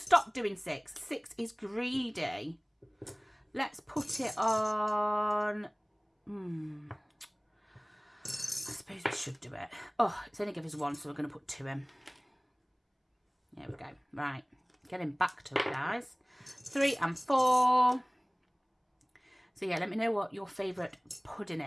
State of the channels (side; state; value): both; identical; correlation 1.00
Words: stop doing 6? 6 is greedy. Let's put it on. I suppose we should do it. Oh, it's only give us 1, so we're going to put 2 in. There we go. Right, getting back to it, guys. 3 and 4. So yeah, let me know what your favourite pudding